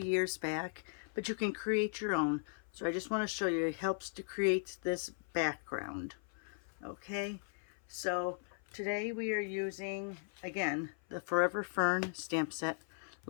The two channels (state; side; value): silent; right; 53 dB below the other